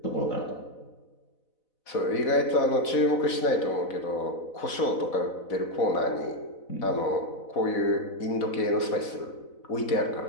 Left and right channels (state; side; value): late; right; 4.0 ms